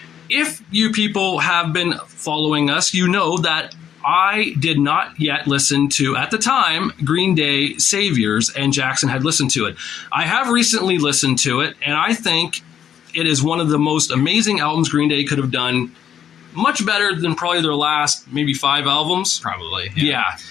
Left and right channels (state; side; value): quieter; right; 9.2 dB